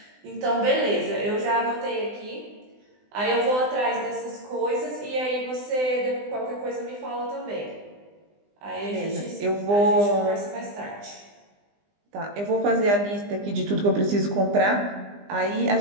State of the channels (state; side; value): late; left; 20 ms